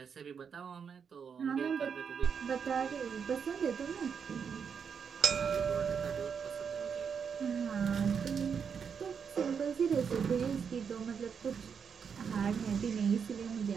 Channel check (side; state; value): left; quieter; 6.7 dB